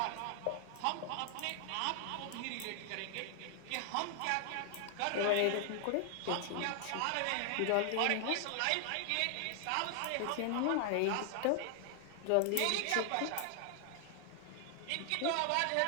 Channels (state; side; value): different; both; correlation 0.00